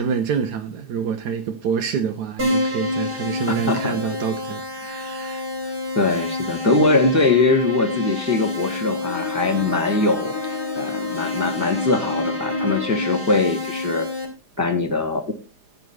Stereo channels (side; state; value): left; late; 4.9 ms